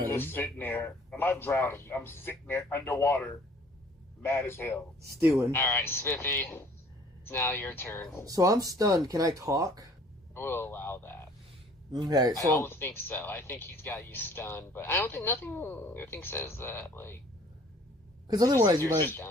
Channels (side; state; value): both; normal; correlation 0.54